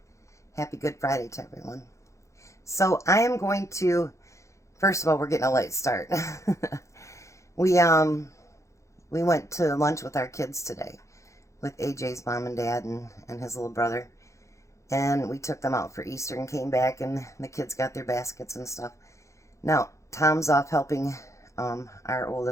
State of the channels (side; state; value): right; late; 0.15 ms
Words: Happy Good Friday to everyone. So I am going to, first of all, we're getting a late start. we went to lunch with our kids today, with AJ's mom and dad and his little brother. And we took them out for Easter and came back, and the kids got their baskets and stuff. Now, Tom's off helping our